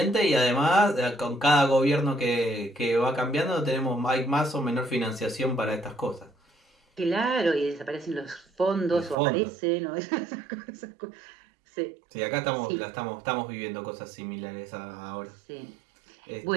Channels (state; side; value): drops out; left; at 9.2 s